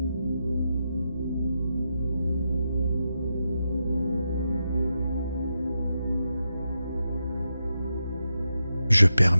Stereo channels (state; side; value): inverted; both; correlation -0.86